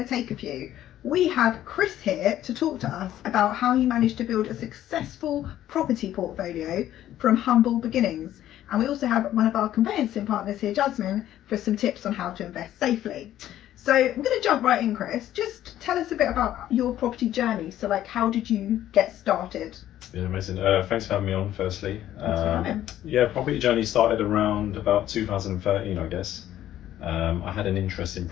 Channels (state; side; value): quieter; right; 12.5 dB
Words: to take a few. We have Kris here to talk to us about how he managed to build a successful property portfolio from humble beginnings. And we also have one of our conveyancing partners here, Jasmine, for some tips on how to invest safely. So I'm going to jump right in, Kris. Just tell us a bit about your property journey. So like, how did you get started? Yeah, amazing. Thanks for having me on, firstly. Thanks for having. Yeah, property journey started around about 2013, I guess. I had an interest in